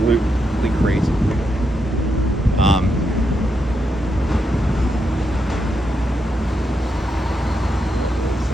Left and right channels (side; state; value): both; normal; correlation 0.83